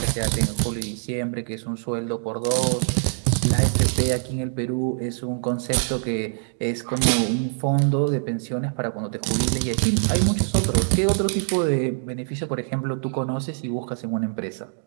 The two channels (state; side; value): silent; left; digital silence